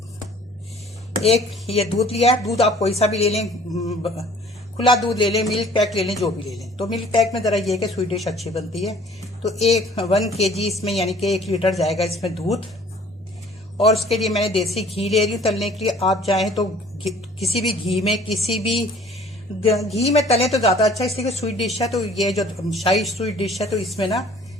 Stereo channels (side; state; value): both; normal; correlation 0.53